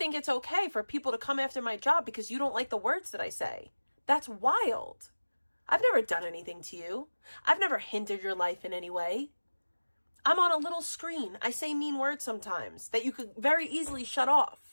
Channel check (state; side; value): inverted; both; correlation -1.00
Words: it's okay for people to come after my job because you don't like the words that I say. That's wild. I've never done anything to you. I've never hindered your life in any way. I'm on a little screen. I say mean words sometimes that you could very easily shut